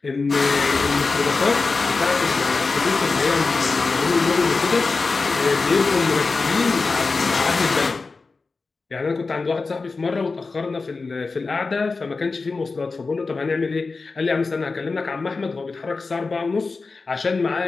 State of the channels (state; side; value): quieter; right; 4.1 dB